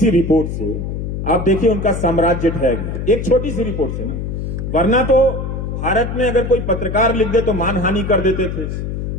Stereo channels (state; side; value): noise; left; hum, 4 dB below the sound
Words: रिपोर्ट से आप देखिए उनका साम्राज्य ढह गया, एक छोटी सी रिपोर्ट से ना। वरना तो भारत में अगर कोई पत्रकार लिख दे तो मानहानि कर देते थे।